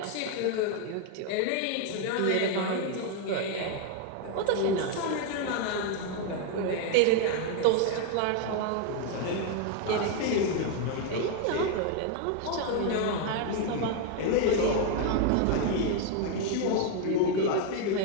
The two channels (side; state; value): both; different; correlation 0.01